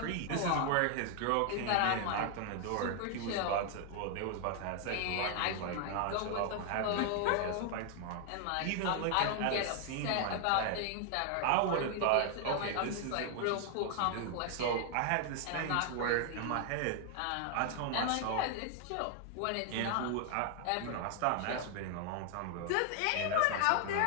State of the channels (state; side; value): different; both; correlation 0.00